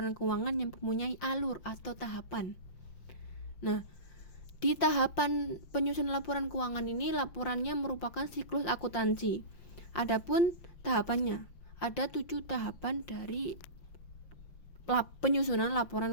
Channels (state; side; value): late; right; 6.0 ms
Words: keuangan yang mempunyai alur atau tahapan. Nah, di tahapan penyusunan laporan keuangan ini, laporannya merupakan siklus akuntansi. Adapun tahapannya, ada 7 tahapan dari penyusunan